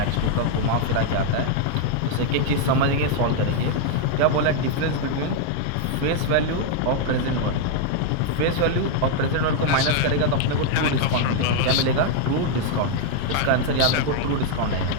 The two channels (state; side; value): different; both; correlation 0.00